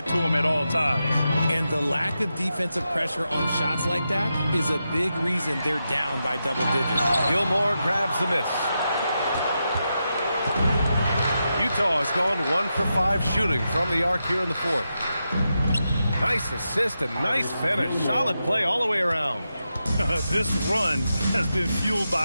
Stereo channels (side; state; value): both; inverted; correlation -0.88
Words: to him at all times. And the lack of defensive pressure on shots like that is a big reason they're down by double digits. Gilmore grabs the miss. Utah has gone 1 for 5 shooting from the arc here in the fourth. Nice assist and nice finish. Solid play all the way around. This run has been fueled